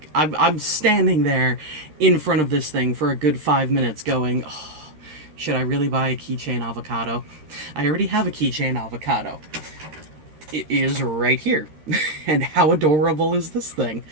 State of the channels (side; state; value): left; late; 13 ms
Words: I'm standing there in front of this thing for a good 5 minutes going, oh, should I really buy a keychain avocado? I already have a keychain avocado. It is right here. And how adorable is this thing?